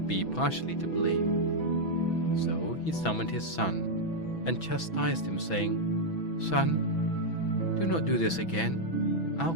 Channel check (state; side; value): late; right; 6.1 ms